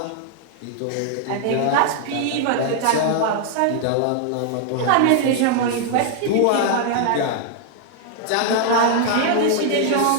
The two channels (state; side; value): different; both; correlation 0.00